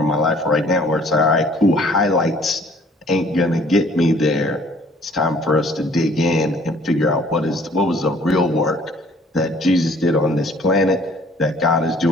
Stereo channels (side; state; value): both; normal; correlation 0.57